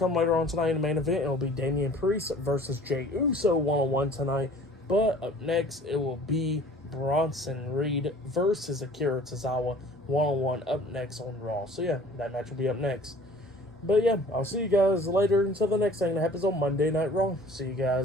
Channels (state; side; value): normal; both; correlation 0.49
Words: later on tonight in the main event, it will be Damien Priest versus Jey Uso one-on-one tonight. But up next, it will be Bronson Reed versus Akira Tozawa one-on-one up next on Raw. So yeah, that match will be up next. But yeah, I'll see you guys later until the next thing that happens on Monday Night Raw. See you